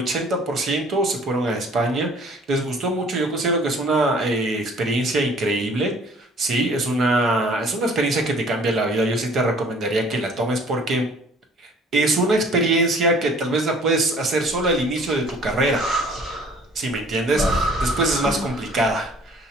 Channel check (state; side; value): normal; both; correlation 0.53